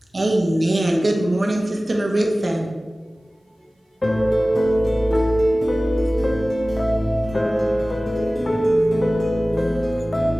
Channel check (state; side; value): normal; both; correlation 0.97